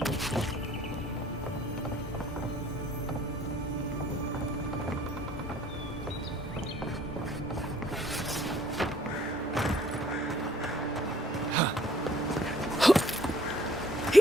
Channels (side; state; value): both; normal; correlation 0.58